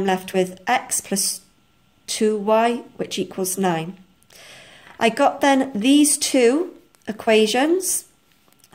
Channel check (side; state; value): both; identical; correlation 1.00